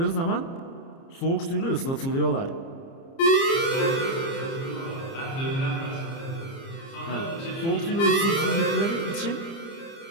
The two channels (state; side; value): late; right; 30 ms